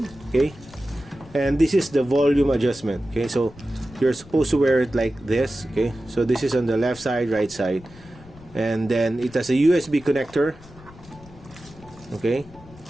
okay, and this is the volume adjustment. Okay, so you're supposed to wear it like this. Okay, so this is on the left side, right side, and then it has a USB connector. Okay,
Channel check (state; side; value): noise; left; rumble, 21 dB below the sound